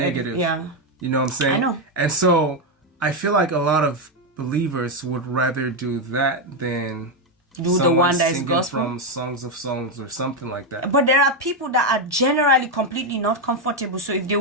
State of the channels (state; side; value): normal; both; correlation 0.05